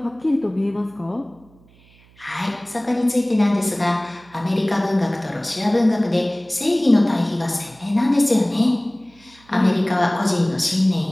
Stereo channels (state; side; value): noise; right; hum, 28 dB below the sound